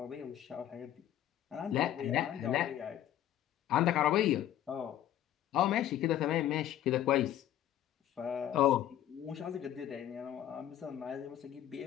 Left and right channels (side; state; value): right; quieter; 11.6 dB